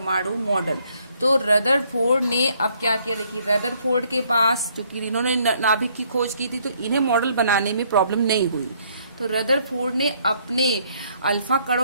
मॉडल। तो रदरफोर्ड ने अब क्या किया, देखिए रदरफोर्ड के पास क्योंकि इन्होंने नाभिक की खोज की थी तो इन्हें मॉडल बनाने में प्रॉब्लम नहीं हुई। तो रदरफोर्ड ने अपने अल्फा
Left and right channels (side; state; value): both; inverted; correlation -0.67